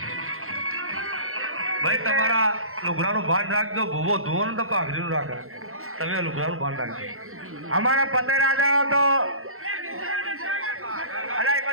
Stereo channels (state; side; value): late; left; 0.62 ms